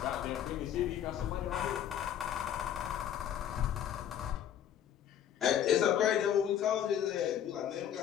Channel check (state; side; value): quieter; right; 10.0 dB